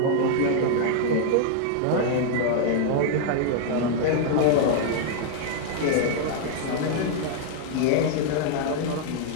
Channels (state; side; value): different; both; correlation -0.01